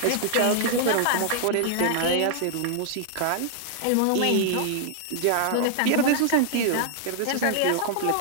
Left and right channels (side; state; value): both; different; correlation -0.01